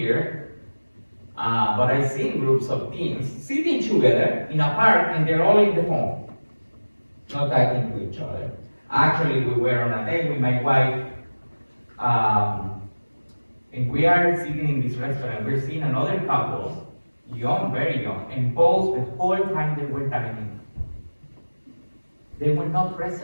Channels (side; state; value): both; inverted; correlation -1.00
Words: but I see groups of teens sitting together in a park and they're all in the phone, not talking to each other. Actually, we were on a date with my wife, and we are sitting in this restaurant. We're seeing another couple, young, very young, and both the whole time they were dining, they were not